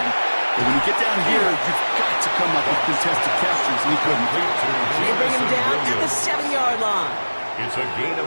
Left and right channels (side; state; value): both; inverted; correlation -1.00